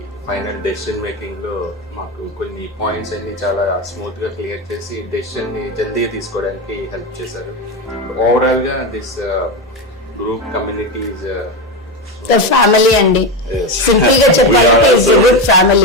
ఫైనల్ డెసిషన్ మేకింగ్ లో మాకు కొన్ని పాయింట్స్ అన్ని చాలా స్మూత్ గా క్లియర్ చేసి డెసిషన్ ని జల్దీగా తీసుకోవడానికి హెల్ప్ చేశారు. ఓవరాల్ గా this group community is family అండి. సింపుల్ గా చెప్పాలంటే it's a good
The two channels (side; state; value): both; normal; correlation 0.15